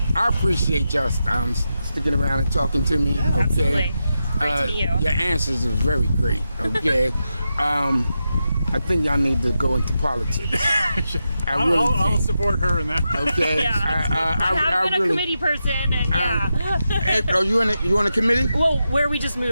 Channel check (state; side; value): inverted; both; correlation -0.88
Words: I appreciate y'all sticking around and talking to me. Yeah, okay. Absolutely. Great to meet you. Your answers are very great. Okay. I think y'all need to go into politics. I'll support her in that. Okay. Yeah. I have been a committee person, and Hey, are you on a committee? well, where we just